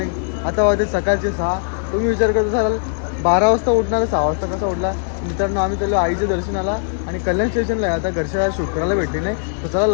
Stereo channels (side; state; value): right; silent; digital silence